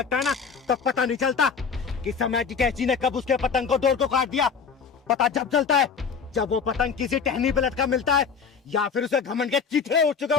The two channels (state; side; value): quieter; right; 6.0 dB